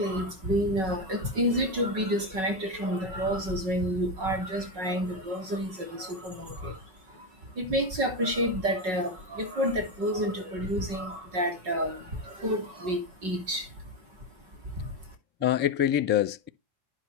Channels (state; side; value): late; left; 5.4 ms